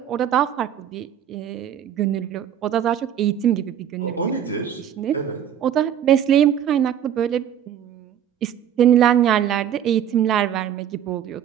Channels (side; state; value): left; quieter; 9.7 dB